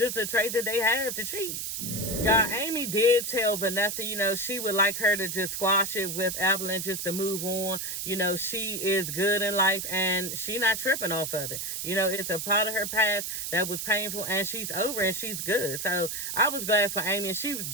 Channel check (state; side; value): noise; right; hiss, 4 dB below the sound